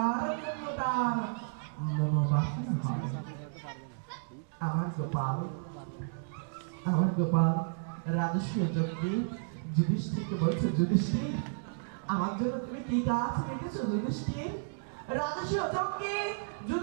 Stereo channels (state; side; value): silent; left; digital silence